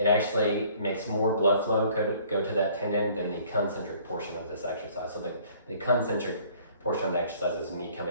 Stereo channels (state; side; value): inverted; both; correlation -0.56